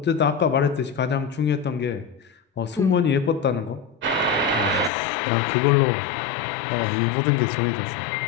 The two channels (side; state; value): right; drops out; at 4.9 s